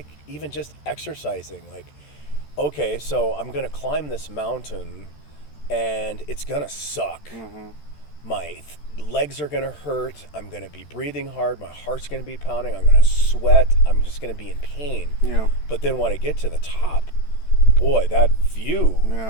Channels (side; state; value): right; late; 13 ms